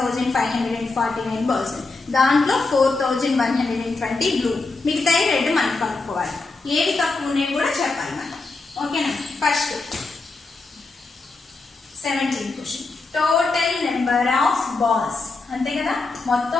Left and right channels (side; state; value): right; quieter; 3.7 dB